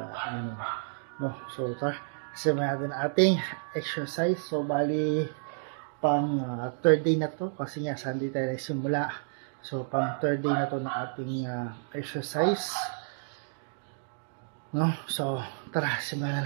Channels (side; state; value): left; silent; digital silence